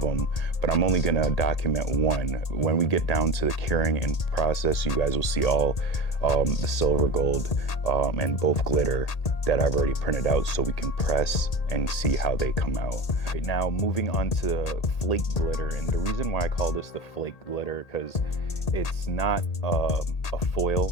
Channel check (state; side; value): late; right; 1.8 ms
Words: but I'm only gonna document one. When we get down to the curing and process, you guys will see all the silver, gold, and both glitter that I've already printed out so we can press and see how they come out. Right now, moving on to flake glitter, and the reason why I call this the flake glitter, because it's not a